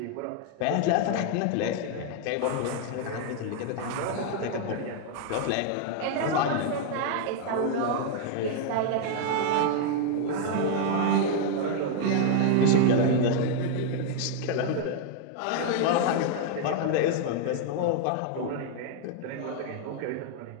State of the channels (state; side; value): different; both; correlation 0.00